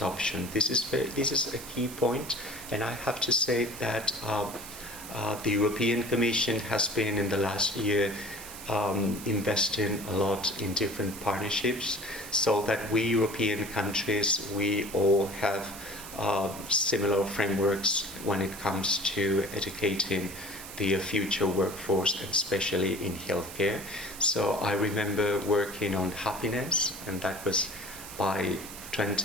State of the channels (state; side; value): noise; right; hiss, 13 dB below the sound